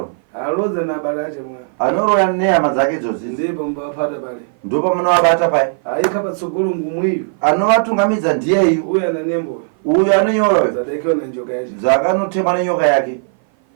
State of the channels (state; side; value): silent; left; 57 dB below the other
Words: Aloza na balaje mwa. anoroya nehama dzake idzozi Ndipo mbapata pale. ndo pamunovabata pai Aika patsogolo ngumwiyo. anovatungamidza ndiyeyu Uyu ana nembo. uyu anonyora Zadekiwa na njoka yacho. dzakanotemwa nenyoka yake